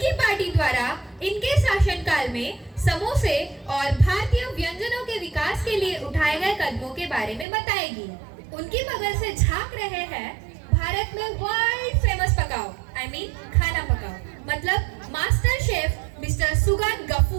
पार्टी द्वारा इनके शासनकाल में समोसे और भारतीय व्यंजनों के विकास के लिए उठाए गए कदमों के बारे में बताएगी। उनकी बगल से झांक रहे हैं भारत में वर्ल्ड फेमस पकाओ, खाना पकाओ, मतलब master chef mister Sugan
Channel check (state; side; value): drops out; left; at 7.5 s